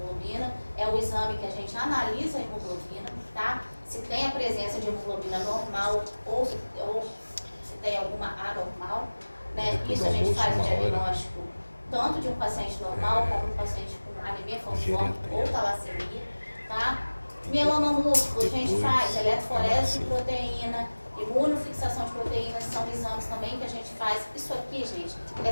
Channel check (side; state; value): both; inverted; correlation -1.00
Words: É o exame que a gente analisa a hemoglobina, tá? Se tem a presença de hemoglobina normal ou se tem alguma anormal, né? Isso a gente faz o diagnóstico tanto de um paciente normal como um paciente com anemia falciforme ou talassemia, tá? Mieloma múltiplo, a gente faz eletroforese de proteína, imunofixação de proteínas, são exames também que a gente faz. Isso aqui, gente, é